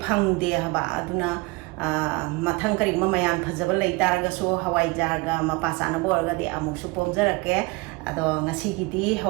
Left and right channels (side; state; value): left; quieter; 25.4 dB